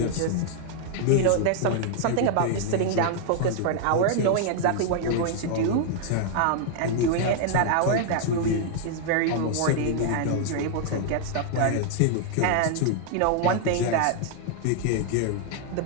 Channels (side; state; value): both; different; correlation 0.00